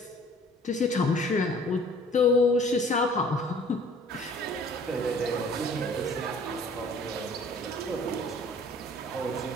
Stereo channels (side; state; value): both; normal; correlation 0.52